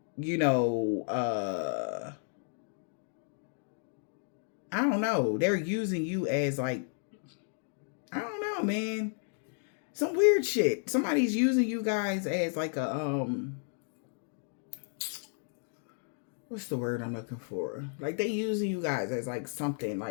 I don't know. They're using you as like, I don't know, man. Some weird shit. Somebody's using you guys as like a, what's the word I'm looking for? Like, they using you guys as like something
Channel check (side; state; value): right; silent; 56 dB below the other